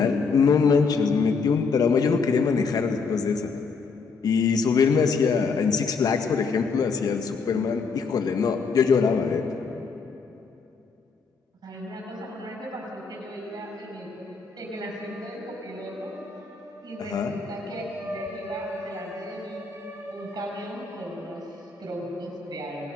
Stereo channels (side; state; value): right; quieter; 4.9 dB